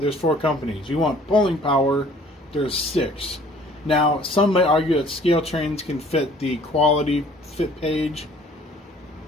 4 companies. You want pulling power, there's 6. Now, some may argue that scale trains can fit the quality fit page,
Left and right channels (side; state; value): both; normal; correlation 0.54